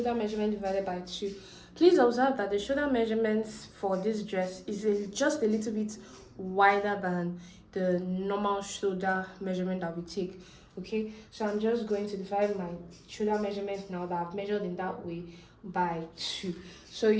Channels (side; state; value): both; identical; correlation 1.00